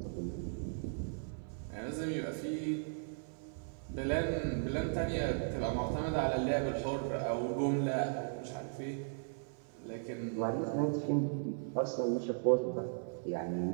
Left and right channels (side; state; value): left; silent; 53 dB below the other